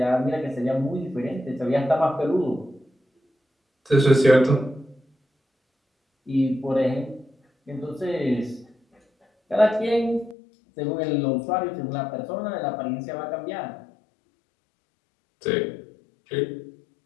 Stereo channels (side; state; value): right; drops out; at 10.4 s